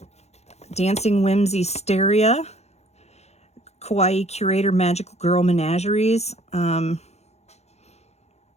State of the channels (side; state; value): right; late; 0.31 ms